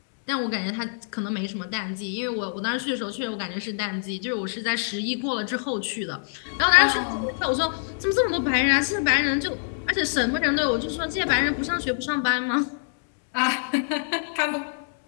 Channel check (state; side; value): silent; right; digital silence